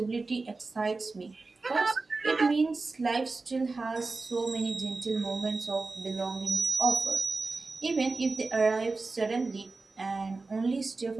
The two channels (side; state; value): left; quieter; 3.7 dB